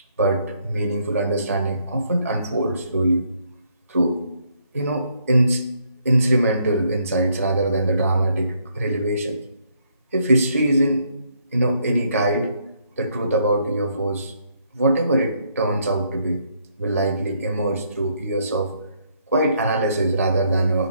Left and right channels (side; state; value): both; inverted; correlation -0.71